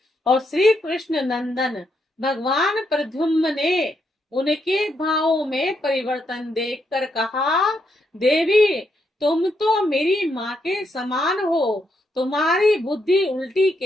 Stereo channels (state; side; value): normal; both; correlation 0.79